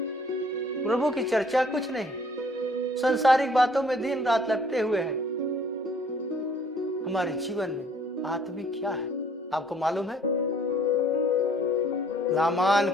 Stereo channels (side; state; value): both; normal; correlation 0.58